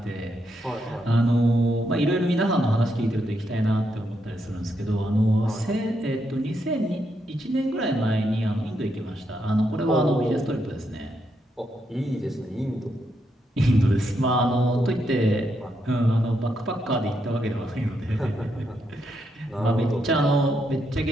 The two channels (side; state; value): both; normal; correlation 0.80